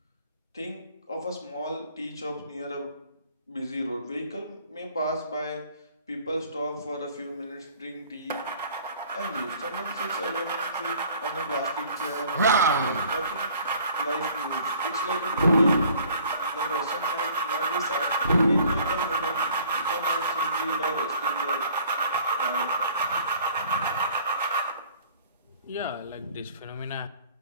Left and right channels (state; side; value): inverted; both; correlation -0.54